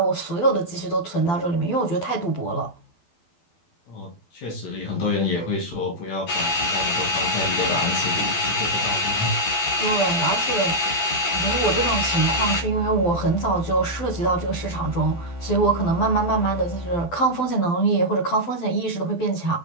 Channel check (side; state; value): right; late; 12 ms